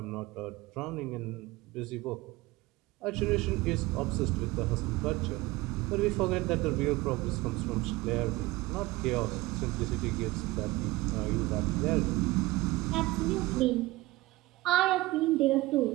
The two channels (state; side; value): quieter; left; 19.8 dB